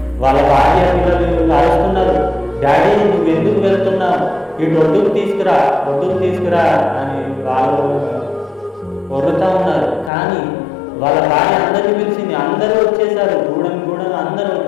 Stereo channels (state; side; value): drops out; right; at 10.1 s